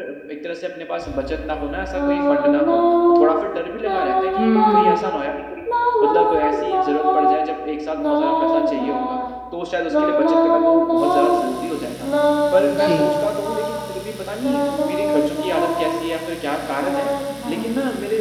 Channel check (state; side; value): identical; both; correlation 1.00